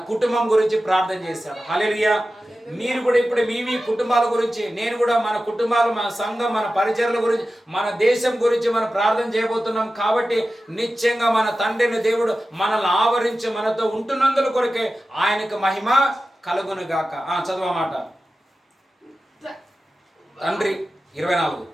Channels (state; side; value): normal; both; correlation 0.94